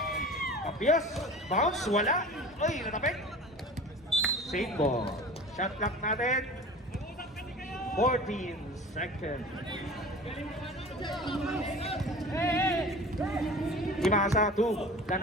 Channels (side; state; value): both; normal; correlation 0.39